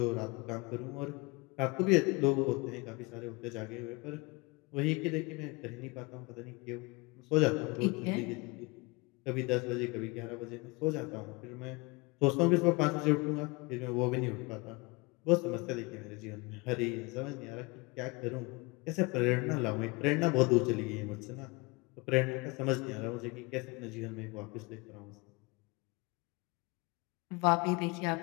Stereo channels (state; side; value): quieter; right; 26.2 dB